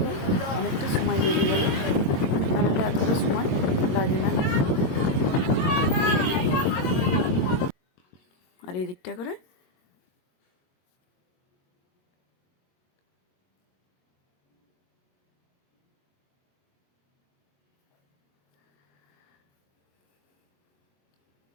অনেকটা সময় লেগে গেল। তাহলে এতটা সময় লাগে না। আর এদিকটা করে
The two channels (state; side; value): late; right; 22 ms